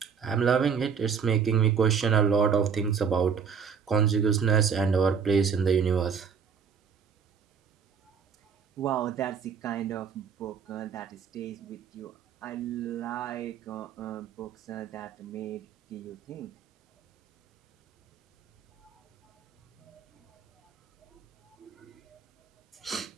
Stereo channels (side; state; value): left; quieter; 6.7 dB